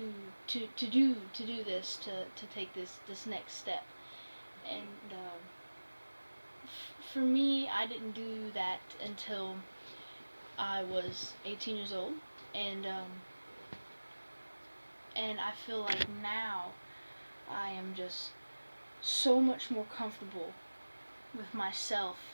do this, to take this next step. And for me, I didn't do that until I was 18 years old, and I feel like now I am just so much more comfortable with myself,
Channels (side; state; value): both; inverted; correlation -1.00